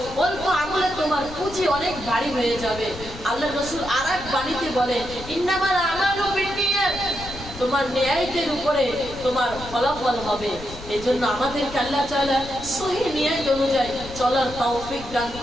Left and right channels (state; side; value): noise; left; rumble, 13 dB below the sound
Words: অল্প আমলে তোমার পুঁজি অনেক ভারী হয়ে যাবে। আল্লাহর রাসূল আরেক বাণীতে বলেন ইন্নামাল আমালু বিন্নিয়াত, তোমার নিয়তের উপরে তোমার ফলাফল হবে। এই জন্য আমাদেরকে আল্লাহ তাআলা সহি নিয়ত অনুযায়ী চলার তৌফিক দান